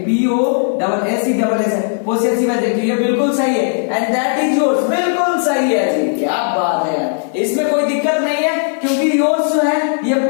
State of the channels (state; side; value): silent; right; 56 dB below the other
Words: POSSESS possessive adjective, ये बिल्कुल सही है। एंड दैट इज योर्स, बिल्कुल सही है जी, क्या बात है यार, इसमें कोई दिक्कत नहीं है, क्योंकि योर्स जो है ये